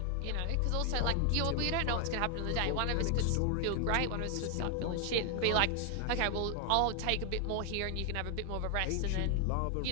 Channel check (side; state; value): both; different; correlation 0.00